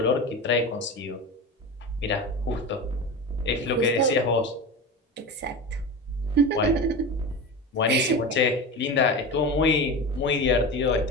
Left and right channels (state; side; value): normal; both; correlation 0.26